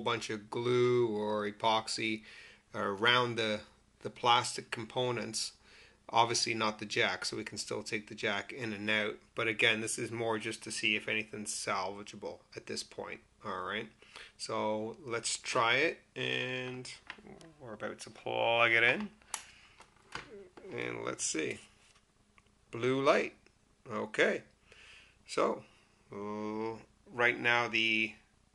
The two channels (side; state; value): both; identical; correlation 1.00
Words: bunch of glue or epoxy around the plastic components. Obviously not the jack, so we can still take the jack in and out. But again, this is more just to see if anything's salvageable at this point. Alright, so let's try it, and we're about to plug it in. And let's see. Blue light. Okay, so right now the